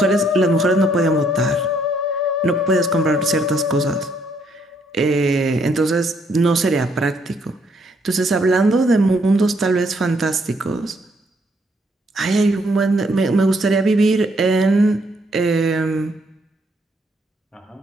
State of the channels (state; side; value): normal; both; correlation 0.70